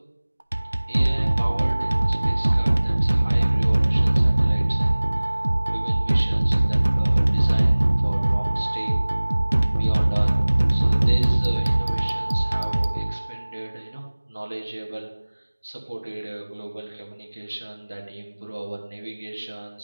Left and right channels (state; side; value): inverted; both; correlation -1.00